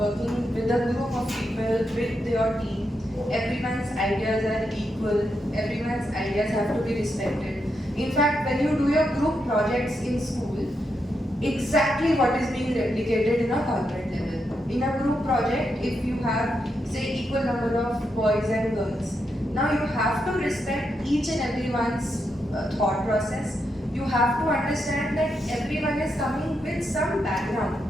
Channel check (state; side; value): normal; both; correlation 0.83